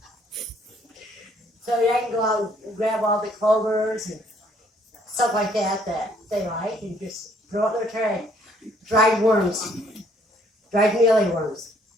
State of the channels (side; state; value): both; normal; correlation 0.64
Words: I can go out and grab all the clovers and stuff like that they like and just throw it in their tray. Dried worms, dried mealyworms.